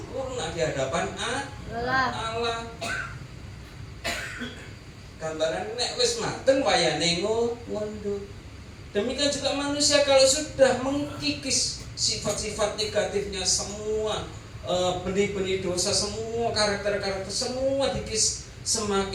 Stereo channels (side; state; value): both; identical; correlation 1.00